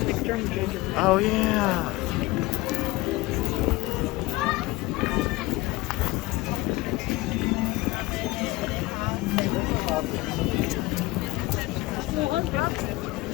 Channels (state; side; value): quieter; right; 20.2 dB